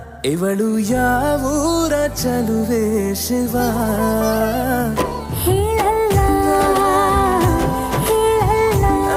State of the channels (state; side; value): identical; both; correlation 1.00